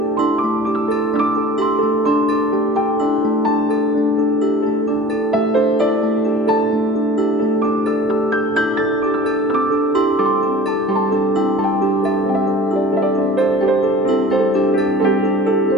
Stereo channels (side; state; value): both; normal; correlation 0.43